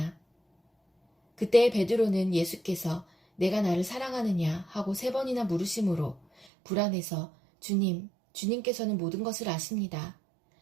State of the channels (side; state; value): left; drops out; at 6.5 s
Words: 그때 베드로는 예수께서 내가 나를 사랑하느냐 하고 세 번이나 물으심으로 불안해서 주님께서는 모든 것을 아십니다.